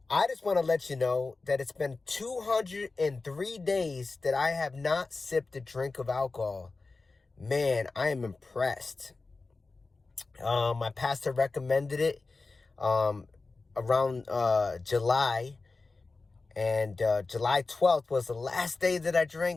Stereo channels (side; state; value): right; quieter; 3.7 dB